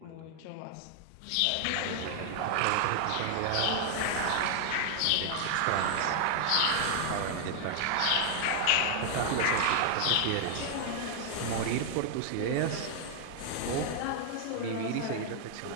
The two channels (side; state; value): both; different; correlation 0.00